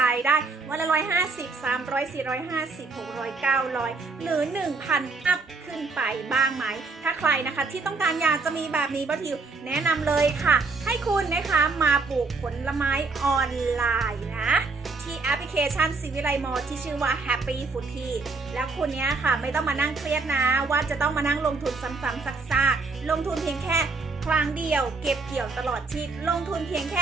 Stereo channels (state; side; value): quieter; left; 4.1 dB